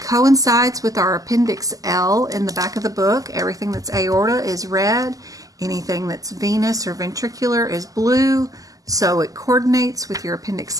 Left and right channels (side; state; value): left; late; 0.17 ms